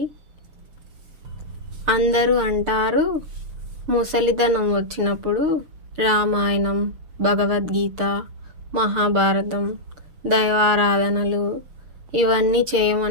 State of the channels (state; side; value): late; left; 6.6 ms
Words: అందరూ అంటారు ముసలితనం వచ్చినప్పుడు రామాయణం, భగవద్గీత, మహాభారతం, దైవారాధనలు ఇవన్నీ